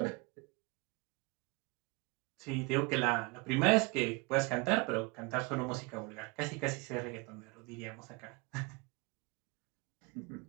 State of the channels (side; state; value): left; quieter; 27.3 dB